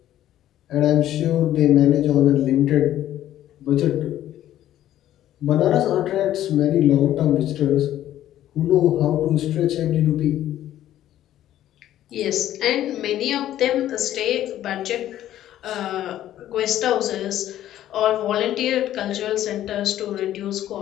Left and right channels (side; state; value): right; quieter; 12.6 dB